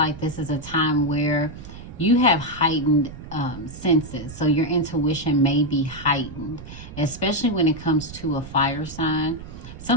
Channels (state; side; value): noise; right; rumble, 14 dB below the sound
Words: this is a time where you have heightened senses. So your intuition may be heightened, especially when it comes to a fire sign.